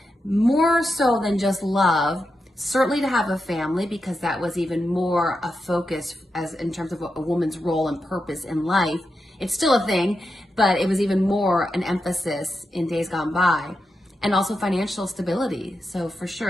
more so than just love. Certainly to have a family, because that was even more a focus as in terms of a woman's role and purpose in life. It's still a thing, but it was even more an emphasis in days gone by. And also financial stability. So for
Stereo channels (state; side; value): normal; both; correlation 0.88